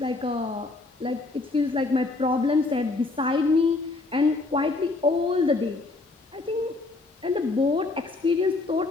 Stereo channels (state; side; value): quieter; right; 3.4 dB